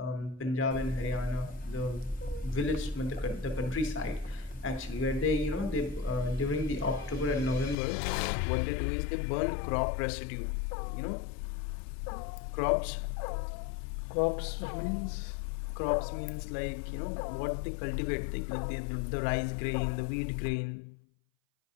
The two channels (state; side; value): drops out; right; at 7.8 s